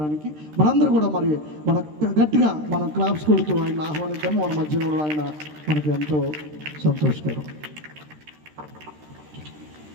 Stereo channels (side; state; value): left; late; 13 ms